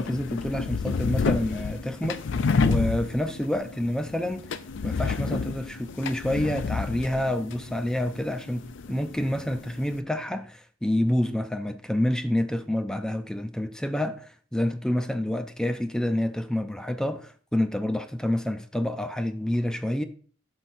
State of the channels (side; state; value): both; normal; correlation 0.87